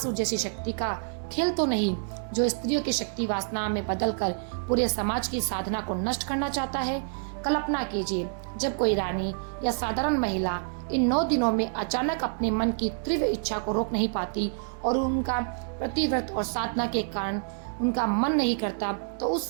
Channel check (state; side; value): silent; left; 59 dB below the other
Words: जैसी शक्ति का खेल तो नहीं जो स्त्रियों की शक्ति वासना में बदलकर पूरे समाज की साधना को नष्ट करना चाहता है? कल्पना कीजिए, जब कोई रानी या साधारण महिला इन 9 दिनों में अचानक अपने मन की तीव्र इच्छा को रोक नहीं पाती और उनका प्रतिव्रत और साधना के कारण उनका मन नहीं करता, तो उस